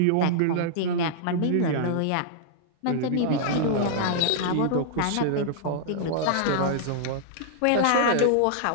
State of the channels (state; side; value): different; both; correlation -0.02